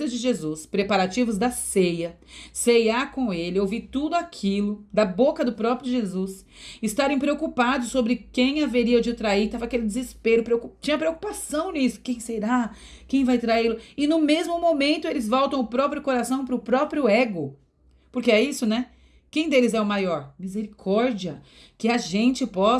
de Jesus, preparativos da ceia, ceiar com ele, ouvir tudo aquilo da boca do próprio Jesus, estarem preocupados sobre quem haveria de trair, tava aquele desespero, tinha preocupação nisso, quem será? Quem vai traí-lo? E no mesmo momento eles voltam o próprio coração pro próprio ego. Porque é isso, né? Quem deles é o maior? Misericórdia. Que a gente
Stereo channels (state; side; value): identical; both; correlation 1.00